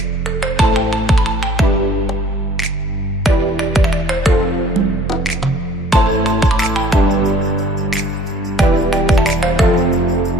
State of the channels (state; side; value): normal; both; correlation 0.52